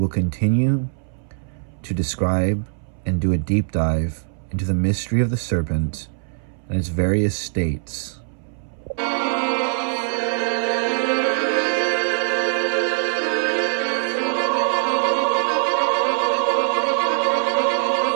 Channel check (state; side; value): silent; left; 64 dB below the other